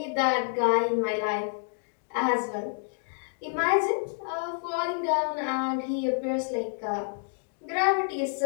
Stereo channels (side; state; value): right; silent; digital silence